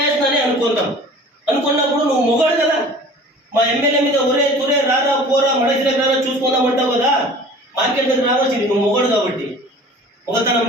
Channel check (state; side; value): normal; both; correlation 0.44